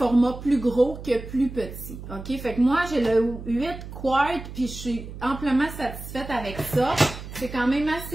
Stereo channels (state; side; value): noise; right; hum, 12 dB below the sound